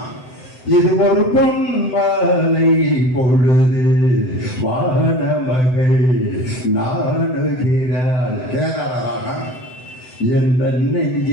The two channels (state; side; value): late; right; 7.9 ms